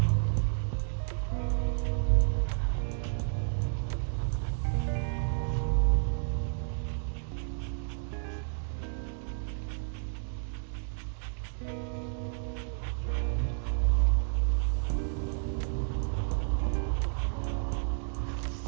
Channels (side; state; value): left; silent; digital silence